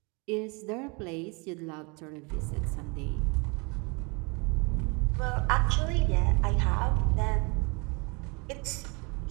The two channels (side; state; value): left; quieter; 30.2 dB